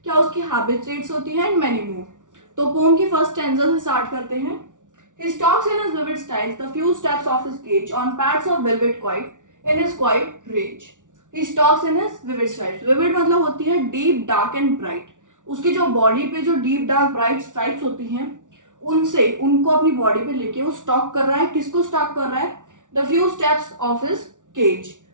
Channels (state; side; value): late; left; 0.87 ms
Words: क्या उसकी हैबिटेट्स होती हैं एंड मैनी मोर. तो पोम की फर्स्ट स्टैंजा से स्टार्ट करते हैं. He stalks in his vivid styles the few steps of his cage on pads of velvet quiet in his quiet rage. He stalks in his vivid styles. Vivid मतलब होती है deep, dark and bright. उसकी जो बॉडी पे जो deep, dark, bright stripes होती हैं उनसे उनको अपनी बॉडी पे लेके वो स्टॉक कर रहा है. किसको स्टॉक कर रहा है? The few steps of his cage.